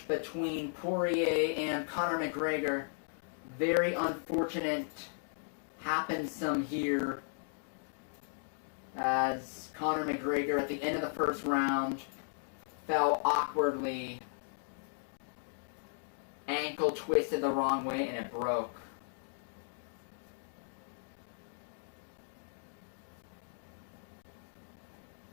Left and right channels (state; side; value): silent; right; digital silence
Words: between Poirier and Conor McGregor. Very unfortunate happened some here, as Conor McGregor at the end of the first round fell awkwardly, ankle twisted the wrong way, and it broke.